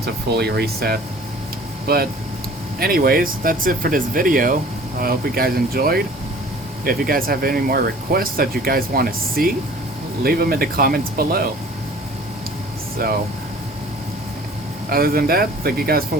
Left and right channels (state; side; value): normal; both; correlation 0.48